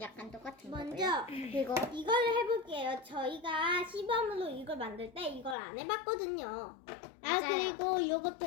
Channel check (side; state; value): right; drops out; at 5.6 s